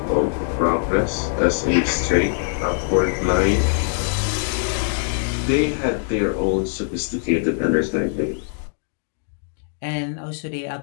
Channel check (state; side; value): silent; right; digital silence